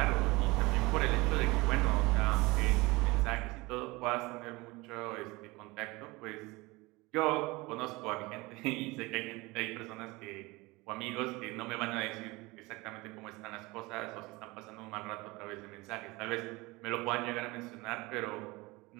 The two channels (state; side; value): quieter; left; 22.9 dB